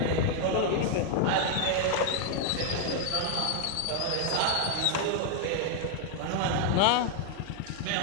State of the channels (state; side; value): different; both; correlation 0.00